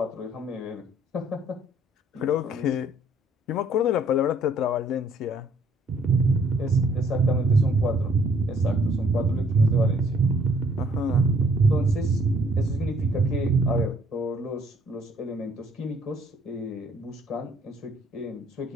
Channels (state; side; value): normal; both; correlation 0.63